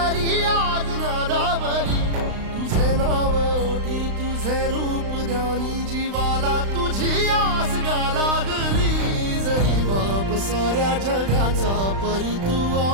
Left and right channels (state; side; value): late; left; 35 ms